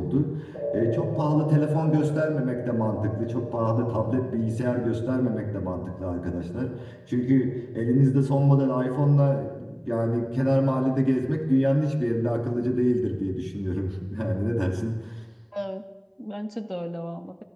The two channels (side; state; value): both; identical; correlation 1.00